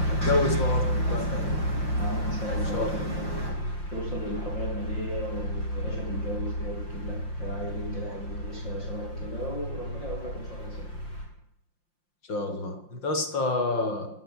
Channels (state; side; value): late; right; 5.7 ms